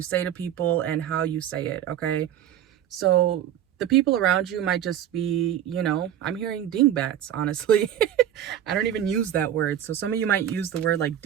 say to people, and how you say it, okay? So the people around you might just be, I'm hearing dingbats, honestly. I don't even use that word. So some of you might use the word like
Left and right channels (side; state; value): left; quieter; 10.6 dB